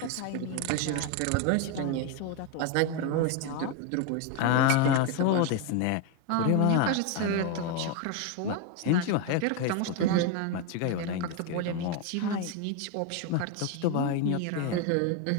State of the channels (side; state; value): both; different; correlation 0.01